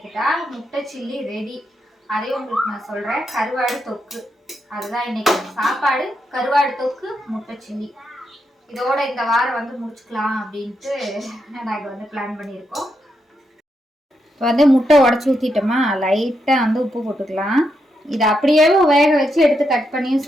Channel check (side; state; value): both; normal; correlation 0.82